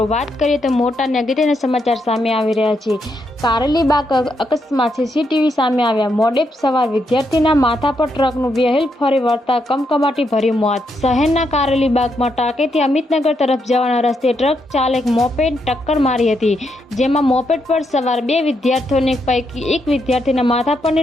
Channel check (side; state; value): both; normal; correlation 0.79